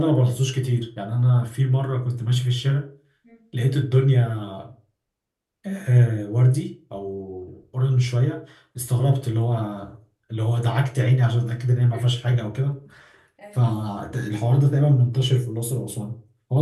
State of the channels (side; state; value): both; identical; correlation 1.00